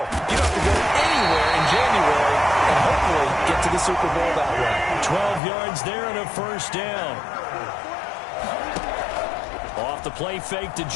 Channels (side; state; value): right; drops out; at 5.4 s